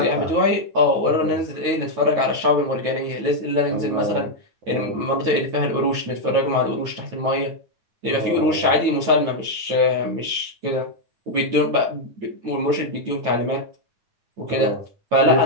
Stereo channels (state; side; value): late; left; 9.2 ms